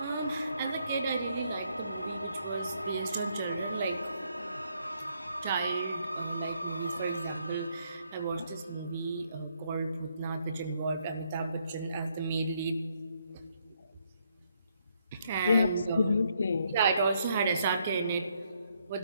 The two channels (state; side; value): inverted; both; correlation -0.73